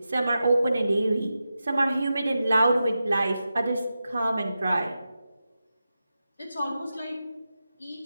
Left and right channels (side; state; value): both; inverted; correlation -0.91